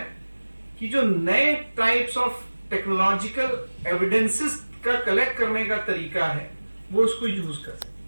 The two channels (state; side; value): inverted; both; correlation -1.00